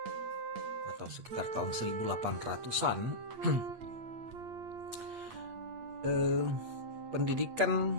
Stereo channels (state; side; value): late; left; 8.7 ms